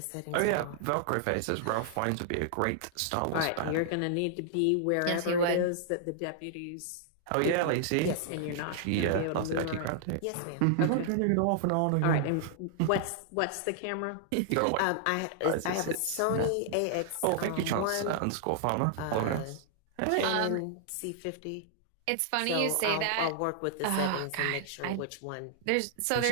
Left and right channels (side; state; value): both; different; correlation -0.01